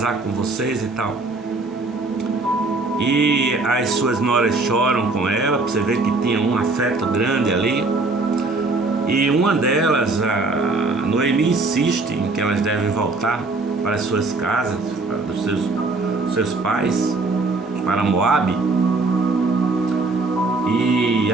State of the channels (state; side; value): quieter; left; 3.4 dB